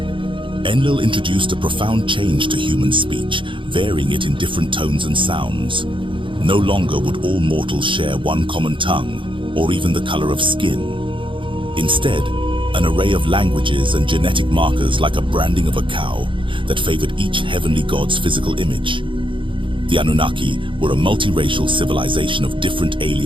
Enlil introduced a profound change to human speech, varying it in different tones and sounds. No longer would all mortals share one common tongue, or even the color of skin. Instead, an array of languages and genetic markers, like a branding of a cow, that favored each heavenly god's physical image. The Anunnaki were a multiracial civilization of different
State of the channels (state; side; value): late; left; 0.24 ms